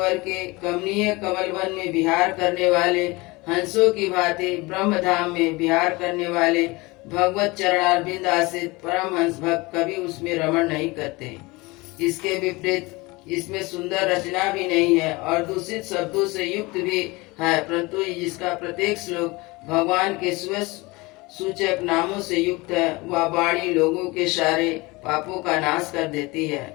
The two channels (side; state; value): right; quieter; 23.5 dB